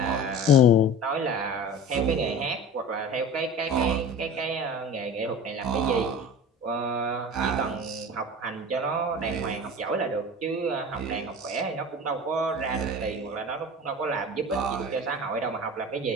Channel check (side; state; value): both; normal; correlation 0.36